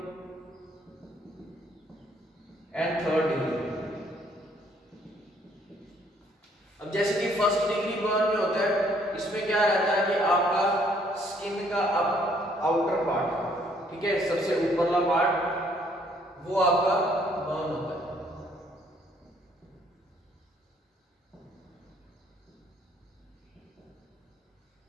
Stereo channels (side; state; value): both; normal; correlation 0.65